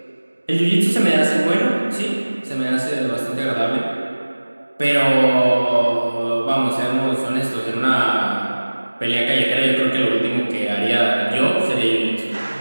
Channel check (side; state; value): both; inverted; correlation -1.00